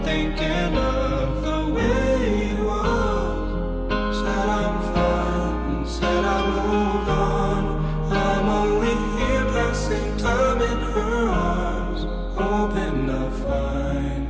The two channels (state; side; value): identical; both; correlation 1.00